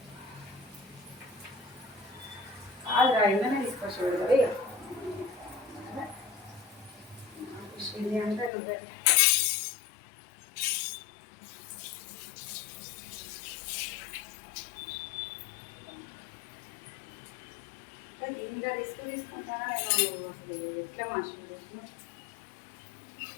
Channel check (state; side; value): drops out; right; at 8.5 s